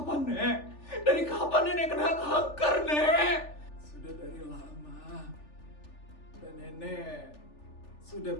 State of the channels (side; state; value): right; late; 3.4 ms